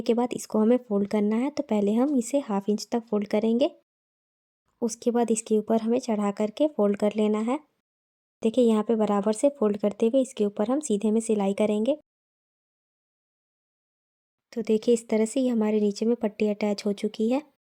के बाद इसको हमें फोल्ड करना है। तो पहले हम इसे 1/2 इंच तक फोल्ड करेंगे, उसके बाद इसके ऊपर हमें चढ़ा करके फोल्ड कर लेना है। देखिए यहाँ पे बराबर से फोल्ड करते हुए इसके ऊपर हम सीधे में सिलाई करेंगे। तो देखिए इस तरह से ये हमारे नीचे में पट्टी अटैच हो चुकी है।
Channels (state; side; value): identical; both; correlation 1.00